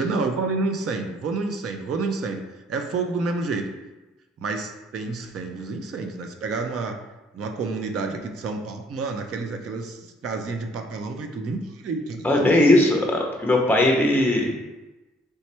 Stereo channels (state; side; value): normal; both; correlation 0.62